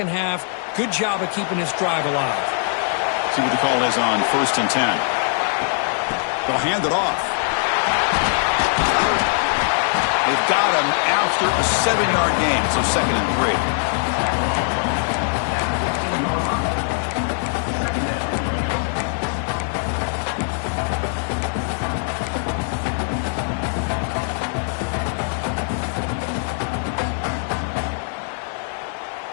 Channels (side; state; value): right; silent; 63 dB below the other